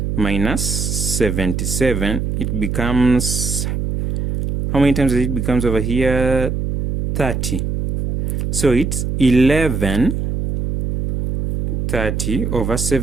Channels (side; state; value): right; noise; hum, 2 dB below the sound